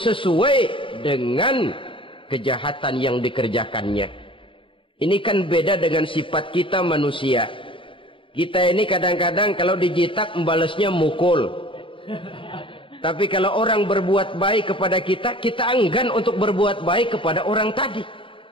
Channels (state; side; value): late; right; 0.25 ms